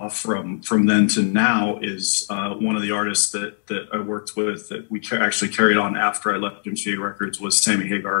from then to now is one of the artists that I worked with that we actually carried on after I left MCA Records was Sammy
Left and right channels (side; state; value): right; silent; digital silence